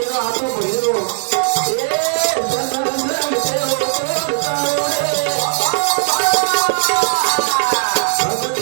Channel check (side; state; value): left; silent; 68 dB below the other